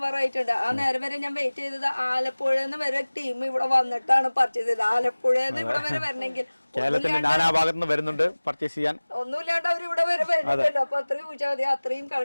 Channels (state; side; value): inverted; both; correlation -1.00